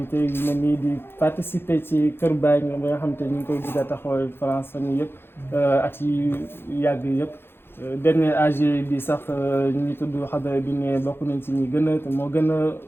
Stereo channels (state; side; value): late; right; 0.11 ms